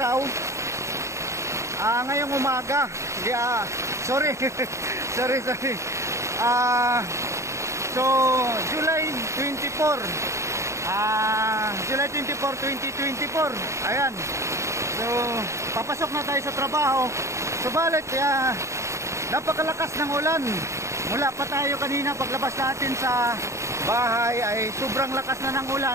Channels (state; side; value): late; left; 0.14 ms